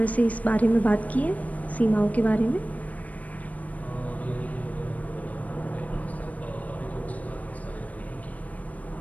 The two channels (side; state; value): right; late; 0.071 ms